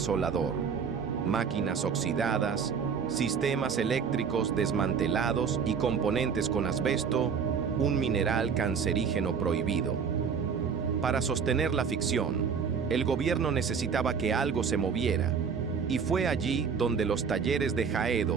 Máquinas oxidadas, sistemas eléctricos desmantelados y componentes con asbesto, un mineral cancerígeno prohibido. Para sostener la ficción, el gobierno necesitaba que algo se moviera, y fue allí donde los talleres de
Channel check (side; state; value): left; quieter; 6.3 dB